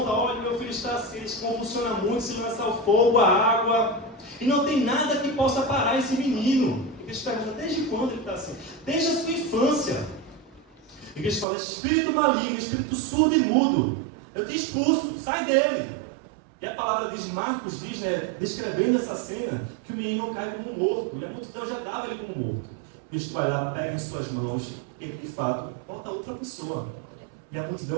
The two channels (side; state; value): left; drops out; at 11.5 s